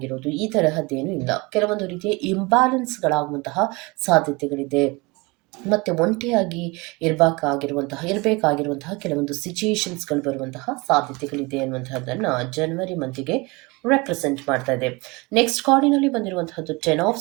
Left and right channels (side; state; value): left; quieter; 25.6 dB